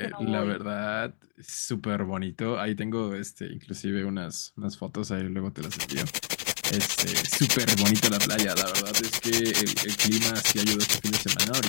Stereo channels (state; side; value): silent; right; 59 dB below the other